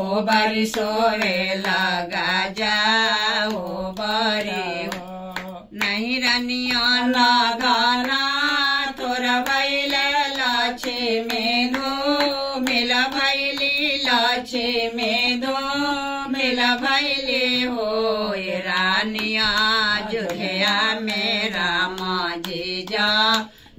बरी सोवे लगा जा ओ बरी नहीं रनिया ना गाना तोर भैले लक्ष्मी धो मिल भैली लक्ष्मी धो मिल भैली हो रानिया अयोध्या में राम जी जा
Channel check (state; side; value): identical; both; correlation 1.00